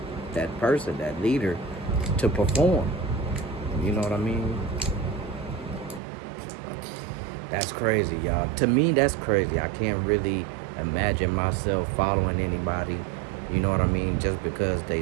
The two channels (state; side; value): drops out; left; at 6.0 s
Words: person, that leader, to perform. You know what I mean? That's crazy, y'all. To me, that's crazy. I can't really imagine myself following anybody. You know what I mean? Just because